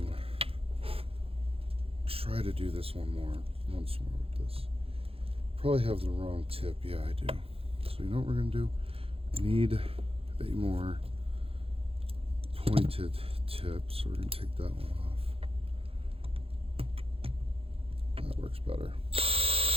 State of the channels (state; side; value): late; left; 0.27 ms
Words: try to do this once more with this. Probably have the wrong tip. Yeah, I do. So you know what we're going to do? I need a more pointed tip, so we're going to take that one off. That works better.